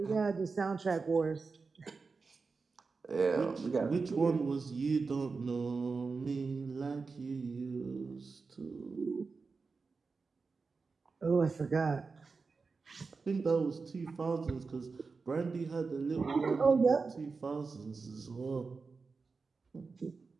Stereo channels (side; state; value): left; quieter; 4.5 dB